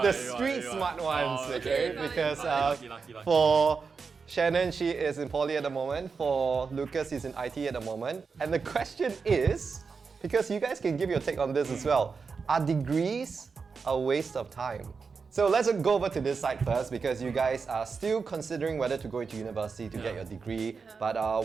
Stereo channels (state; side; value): quieter; left; 5.1 dB